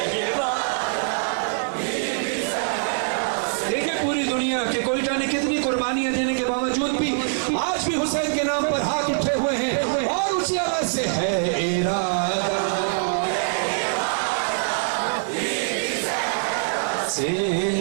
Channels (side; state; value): left; silent; 63 dB below the other